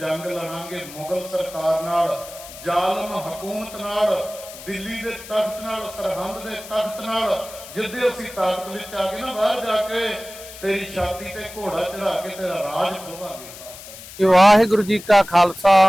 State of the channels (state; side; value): noise; left; hiss, 15 dB below the sound